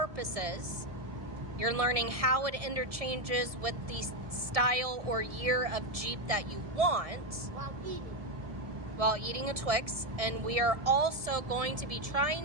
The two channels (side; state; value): left; late; 1.7 ms